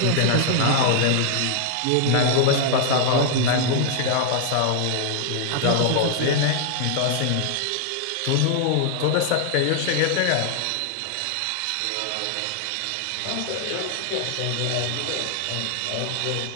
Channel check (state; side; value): different; both; correlation 0.00